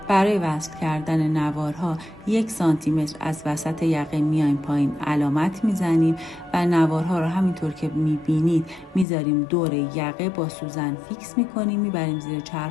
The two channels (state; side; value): drops out; right; at 9.1 s